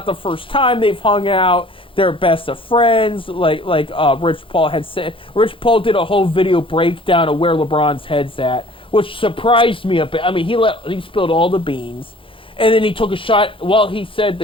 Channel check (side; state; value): right; late; 0.25 ms